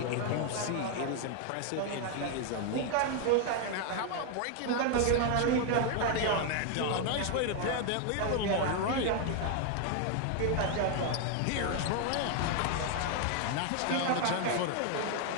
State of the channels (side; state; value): both; different; correlation 0.01